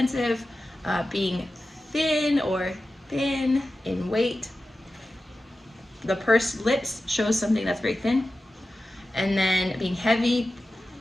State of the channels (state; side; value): normal; both; correlation 0.94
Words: being thin or thin in weight. The pursed lips shows something that's very thin. And then being heavy.